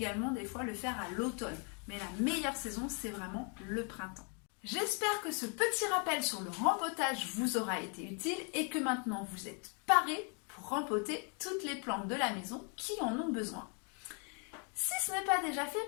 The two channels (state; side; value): quieter; right; 38.1 dB